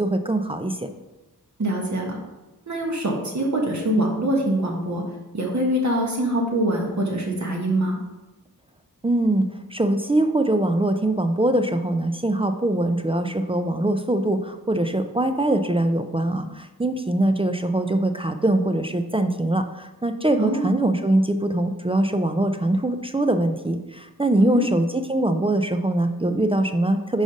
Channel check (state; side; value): normal; both; correlation 0.70